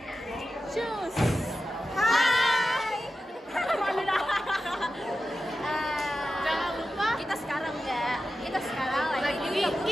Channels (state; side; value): normal; both; correlation 0.92